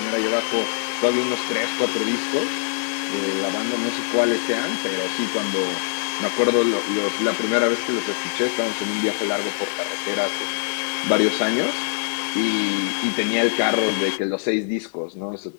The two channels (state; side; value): silent; right; 63 dB below the other